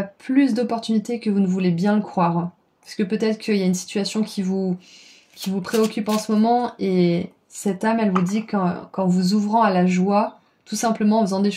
plus d'opportunités que vous ne voulez bien le croire. Parce que peut-être qu'il y a une situation qui vous préoccupe en ce moment et cette âme, elle vous dit qu'en vous ouvrant à la joie, tout simplement en faisant des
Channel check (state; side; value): identical; both; correlation 1.00